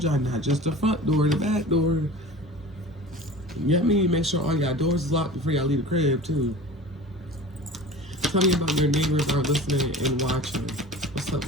y'all not just the front door, the back door. You know what I mean? Make sure all y'all doors is locked before y'all leave the crib too. Tell me about your neighbors are listening and watching. What's up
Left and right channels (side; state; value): both; normal; correlation 0.38